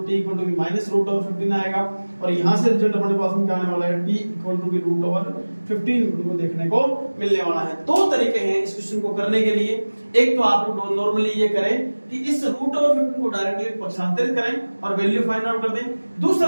t equal to minus root over 15 आएगा। और यहां से रिजल्ट अपने पास में क्या आने वाला है, t equal to root over 15 को देखने को मिलने वाला है। दो तरीके हैं इस क्वेश्चन को करने के लिए। एक तो आप लोग नॉर्मली ये करें कि इस रूट ओवर 15 को डायरेक्टली पक्षांतरित करें और वैल्यू फाइंड आउट कर दें।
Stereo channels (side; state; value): both; inverted; correlation -1.00